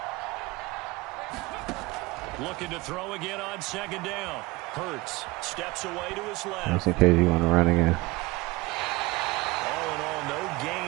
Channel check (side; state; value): left; quieter; 22.2 dB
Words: Looking to throw again on 2nd down. Hurts steps away to his left. Just in case you want to run again. All in all, no